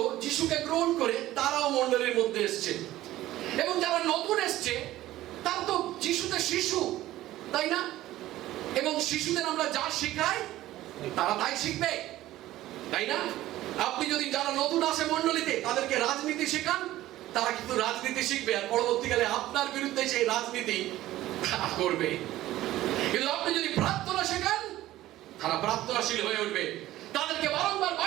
যিশুকে গ্রহণ করে তারাও মণ্ডলীর মধ্যে এসছে। এবং যারা নতুন এসছে তারা তো যিশুতে শিশু, তাই না? এবং শিশুদের আমরা যা শেখাই তারা তাই শিখবে, তাই না? আপনি যদি যারা নতুন আসে মণ্ডলীতে তাদেরকে রাজনীতি শেখান, তারা কিন্তু রাজনীতি শিখবে, আর পরবর্তীকালে আপনার বিরুদ্ধে সেই রাজনীতি করবে। কিন্তু আপনি যদি প্রার্থনা শেখান, তারা প্রার্থনাশীল হয়ে উঠবে। তাদেরকে বারংবার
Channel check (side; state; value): left; quieter; 15.2 dB